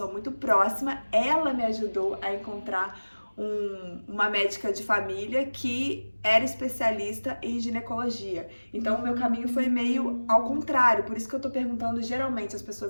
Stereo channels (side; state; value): both; inverted; correlation -1.00